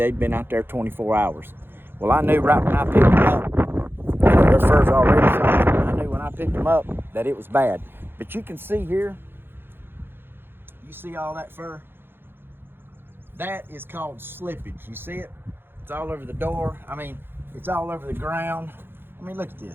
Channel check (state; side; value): late; left; 0.10 ms